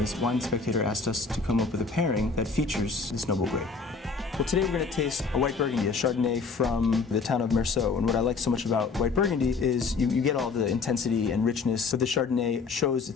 Wine Spectator asked us to come up with a pairing that features this noble grape. Well, today we're going to taste a white Burgundy, a Chardonnay from the town of Meursault. And what I like so much about white Burgundy is you get all the intensity and richness, but the Chardonnay shows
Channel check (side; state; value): right; quieter; 4.7 dB